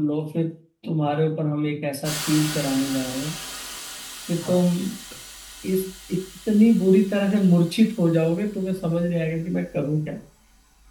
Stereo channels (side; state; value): both; identical; correlation 1.00